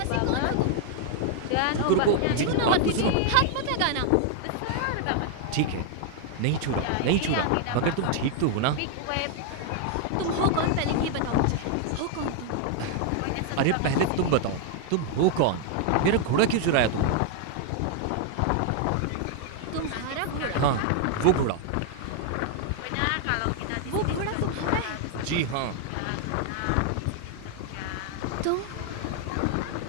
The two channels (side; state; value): both; different; correlation 0.00